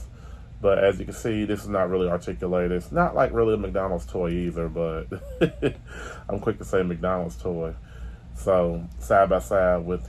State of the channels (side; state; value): both; identical; correlation 1.00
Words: But as you can see, this is not really articulated. It's not like really a McDonald's toy either, but I'm quick to say McDonald's toy. So side by side with